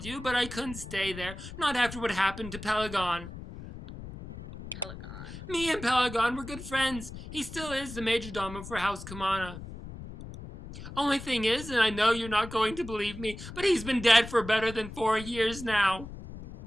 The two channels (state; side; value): noise; left; rumble, 12 dB below the sound